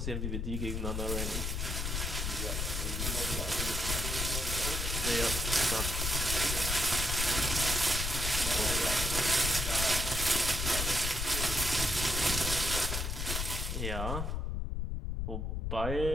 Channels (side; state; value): left; noise; rumble, 1 dB below the sound